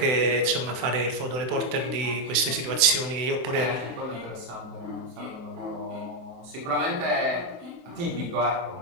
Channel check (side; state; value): left; late; 24 ms